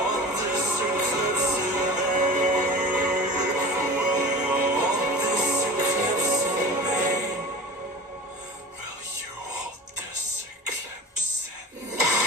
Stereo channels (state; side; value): normal; both; correlation 0.37